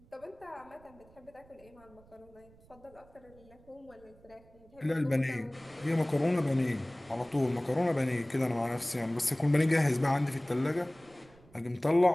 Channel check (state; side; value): noise; right; rumble, 26 dB below the sound